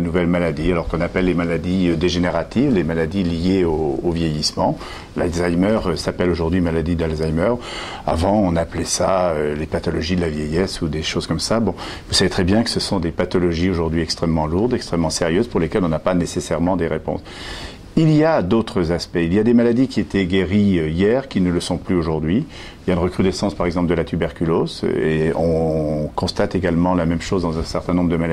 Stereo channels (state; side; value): identical; both; correlation 1.00